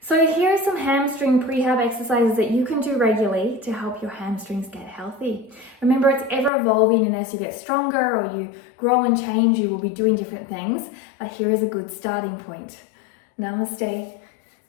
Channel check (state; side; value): drops out; right; at 6.5 s